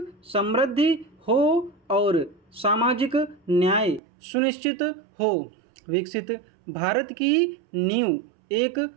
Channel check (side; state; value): left; drops out; at 4.0 s